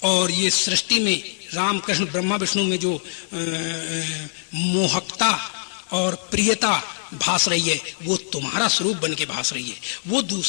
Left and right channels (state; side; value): silent; right; digital silence